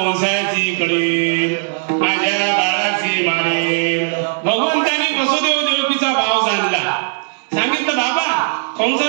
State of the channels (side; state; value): left; silent; digital silence